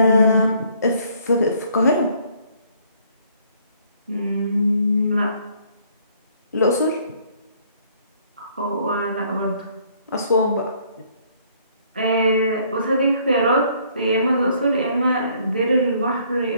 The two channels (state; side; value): inverted; both; correlation -0.63